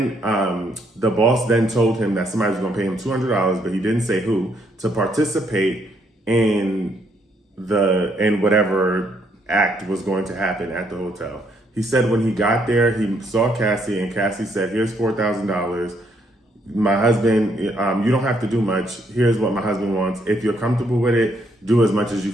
the boss then told him that somebody was going to pay him $200, but he didn't say who, to participate in whatever act was going to happen at the hotel. He said when he got there, he saw Cassie, and Cassie said, here's $4,000. My husband, you don't have to do much. Here's what my husband wants. If you're comfortable with it, do as much as you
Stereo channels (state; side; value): normal; both; correlation 0.72